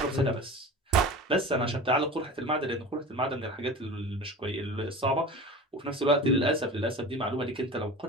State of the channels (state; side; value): normal; both; correlation 0.34